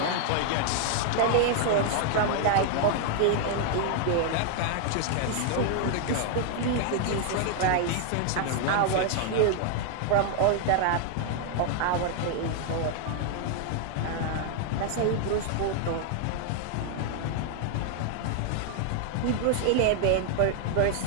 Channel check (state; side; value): different; both; correlation 0.00